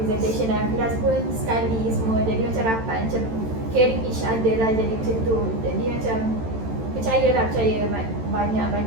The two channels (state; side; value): late; left; 13 ms